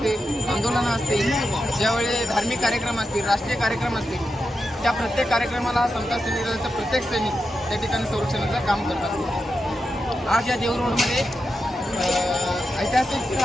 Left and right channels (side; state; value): both; normal; correlation 0.88